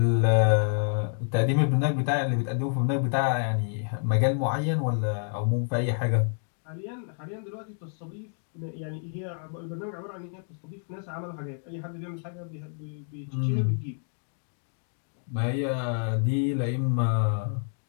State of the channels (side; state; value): right; silent; digital silence